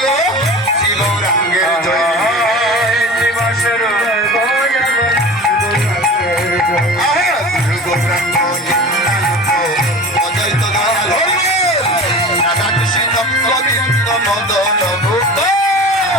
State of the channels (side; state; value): both; normal; correlation 0.36